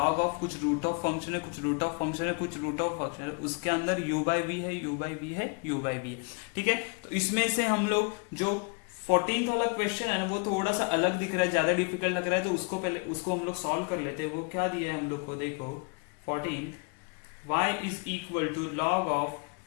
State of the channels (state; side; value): quieter; right; 33.8 dB